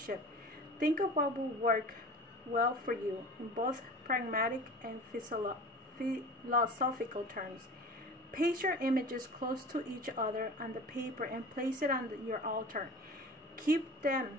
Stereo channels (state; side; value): normal; both; correlation 0.38